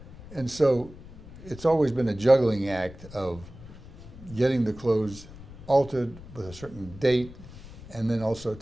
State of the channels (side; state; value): left; noise; rumble, 17 dB below the sound